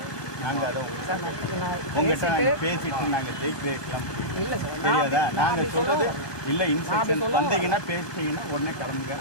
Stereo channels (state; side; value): late; right; 1.2 ms